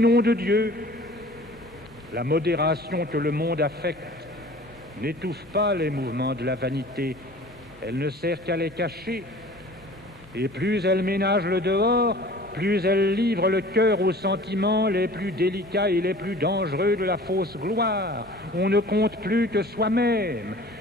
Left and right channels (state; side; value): normal; both; correlation 0.45